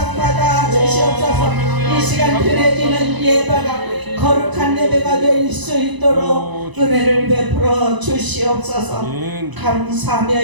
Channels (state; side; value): late; left; 1.0 ms